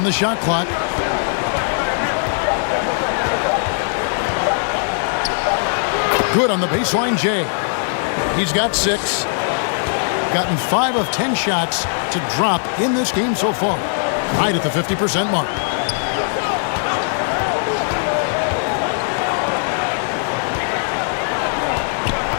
the shot clock. Good on the baseline, Jay. He's got 6. Gotten 5 of 10 shots to drop in this game so far. Right at the 50% mark.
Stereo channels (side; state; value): right; silent; digital silence